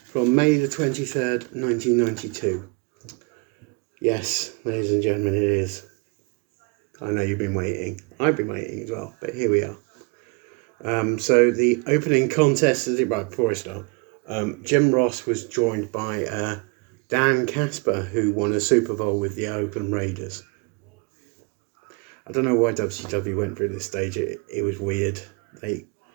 from May the 23rd, 1992. Yes, ladies and gentlemen, it is. I know you've been waiting. I've been waiting as well, but here we are. So the opening contest, right before I start, Jim Ross was joined by Dan Casper, who won a Super Bowl with the Oakland Raiders. I don't know why WCW went through this stage. It was weird. They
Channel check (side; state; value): left; quieter; 30.0 dB